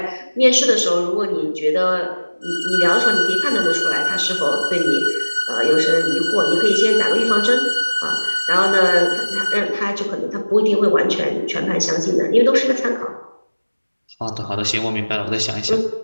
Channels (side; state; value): both; inverted; correlation -1.00